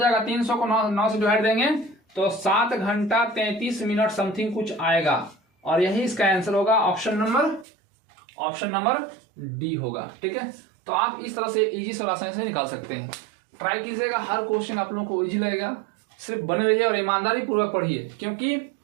300 को 9 से डिवाइड देंगे तो 7 घंटा 33 मिनट समथिंग कुछ आएगा। और यही इसका आंसर होगा, ऑप्शन नंबर डी होगा, ठीक है। तो आप इस तरह से इजी से आसानी से निकाल सकते हैं। ट्राई कीजिएगा, हर क्वेश्चन आप लोगों को इजी लगेगा। सिर्फ बने रहिए और ईमानदारी पूर्वक पढ़िए, क्योंकि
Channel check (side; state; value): left; drops out; at 7.7 s